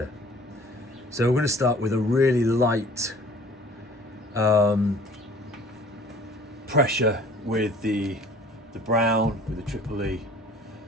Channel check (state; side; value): normal; both; correlation 0.50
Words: So we're going to start with a really light pressure with the brown, with the triple E,